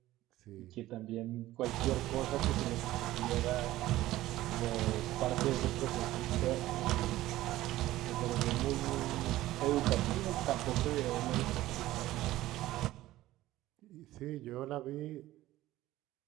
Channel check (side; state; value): left; quieter; 15.8 dB